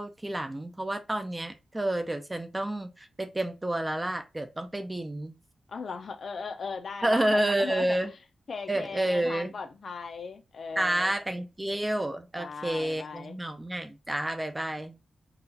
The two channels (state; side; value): normal; both; correlation 0.96